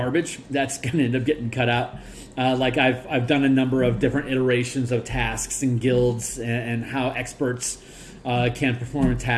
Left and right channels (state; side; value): identical; both; correlation 1.00